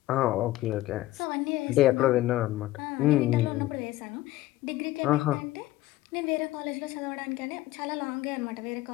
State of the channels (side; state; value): right; quieter; 16.4 dB